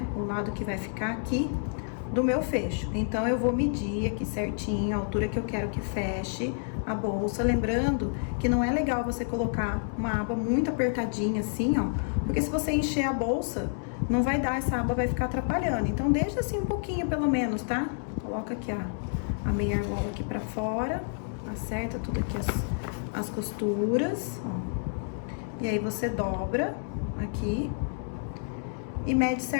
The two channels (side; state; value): right; silent; digital silence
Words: O lado que vai ficar aqui do meu fecho. Então, eu vou medir aqui certinho a altura que eu quero que feche a bolsa. Lembrando que não é legal você colocar uma aba muito apertadinha assim, ó. Porque se você encher a bolsa, não vai dar, essa aba vai ficar atrapalhando. Então, deixa assim um pouquinho pelo menos, tá? Coloca aqui a meia argola aqui pra fora. Acerta tudo aqui as costuras, ó. E aí, você dobra aqui e mede